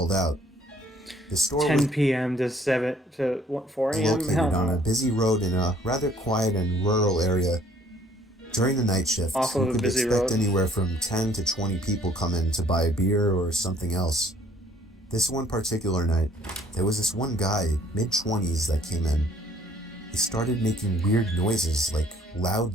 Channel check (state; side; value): normal; both; correlation 0.60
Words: out. The store 10 p.m. to 4 a.m. located on a busy road in a rather quiet and rural area. During the night shift, you could expect anywhere from 10 to 20 people come in to buy a beer or something else. This one particular night, there was this one guy, mid-20s, that came in. He started making weird noises, like loud